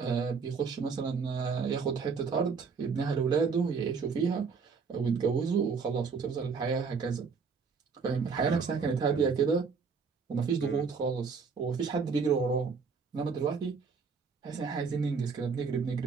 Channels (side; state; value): left; quieter; 5.4 dB